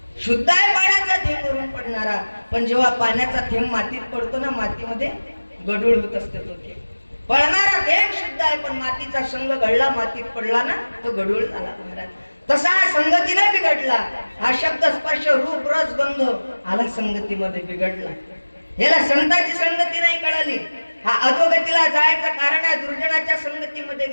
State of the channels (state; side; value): inverted; both; correlation -1.00